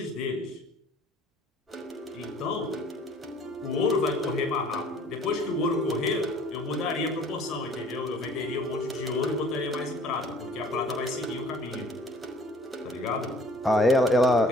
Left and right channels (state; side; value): normal; both; correlation 0.53